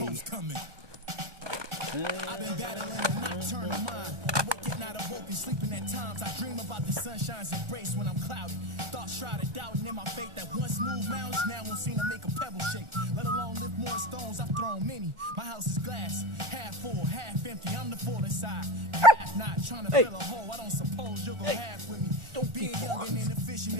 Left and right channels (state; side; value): late; left; 1.4 ms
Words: coming. I've been battling a nocturnal mind. I wake at night, awoken, sleeping at times. I dream about the sunshine's embrace when I'm cloudy. Thoughts shrouded, doubting in my faith that once moved mountains, now won't seem to make a pebble shake. Let alone lift more stones, I've thrown many. My house is glass, half full, half empty. I'm the full inside, half not. Trying to fill a hole, I don't suppose you'll go half with me. Don't be young and inefficient.